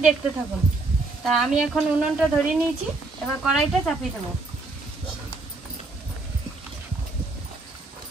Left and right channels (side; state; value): left; quieter; 3.4 dB